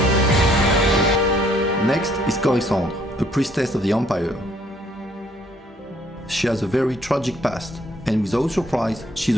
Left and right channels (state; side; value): normal; both; correlation 0.64